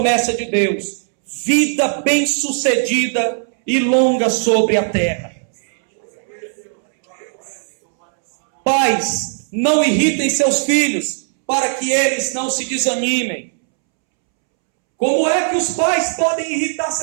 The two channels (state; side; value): silent; left; 68 dB below the other